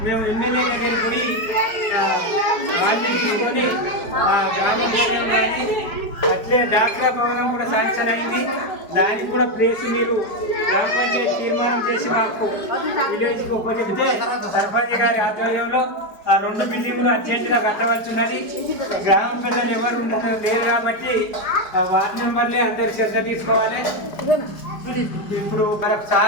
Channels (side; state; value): right; late; 4.9 ms